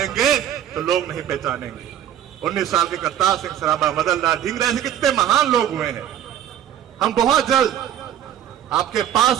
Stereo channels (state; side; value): quieter; left; 10.3 dB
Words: तो लोग नहीं पहचानेंगे। 19 साल के करतार सिंह सराबा, मदन लाल ढींगरा, ऐसे कितने महान लोग हुए हैं। हम बहुत जल्द आपके